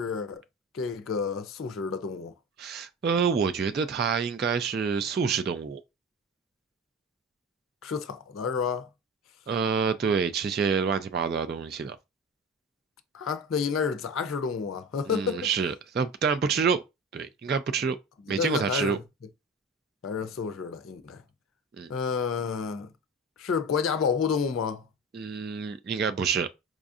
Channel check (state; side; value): normal; both; correlation 0.31